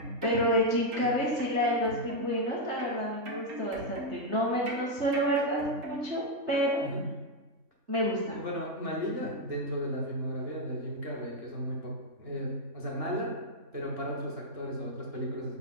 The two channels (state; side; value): late; left; 3.5 ms